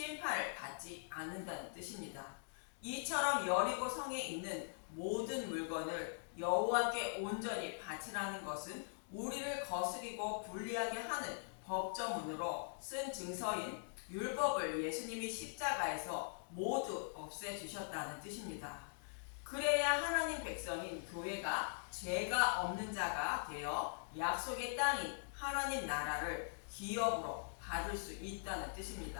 받지 않는다는 뜻입니다. 이처럼 여리고 성에 있는 모든 물건을 여호와께 온전히 바치라는 것은 우리를 거스리고 불리하게 하는 법조문으로 쓴 증서인 율법을 예수님이 십자가에서 모두 없애주셨다는 뜻입니다. 그래야 하나님 백성인 교회가 죄가 없는 자가 되어 약속의 땅인 하나님 나라를 기업으로 받을 수 있다는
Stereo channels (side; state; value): right; silent; digital silence